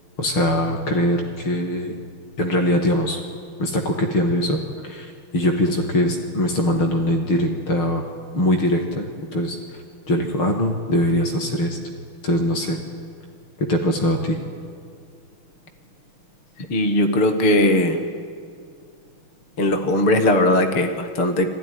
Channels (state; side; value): late; right; 6.5 ms